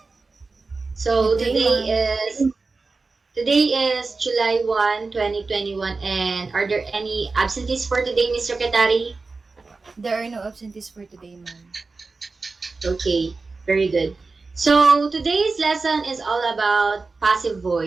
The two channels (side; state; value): left; quieter; 4.0 dB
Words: So Good day, ma'am. today is July 1, 2021, and are there any absentees for today, Ms. Secretary? There are no absentees for today, ma'am. Okay, very good. So today's lesson is all about passive